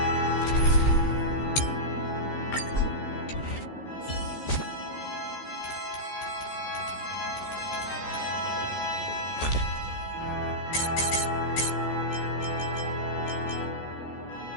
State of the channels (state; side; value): late; right; 14 ms